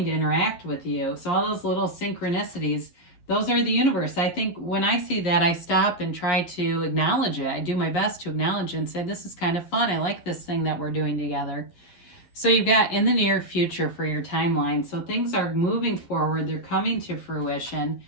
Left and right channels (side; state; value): right; late; 11 ms